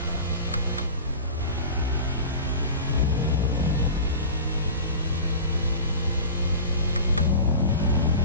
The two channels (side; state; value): both; inverted; correlation -0.34